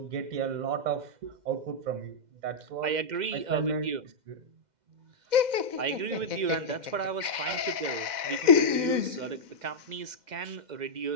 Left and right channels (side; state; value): left; late; 2.1 ms